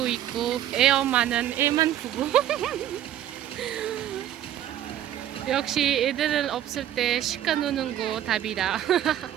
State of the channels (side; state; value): left; quieter; 11.7 dB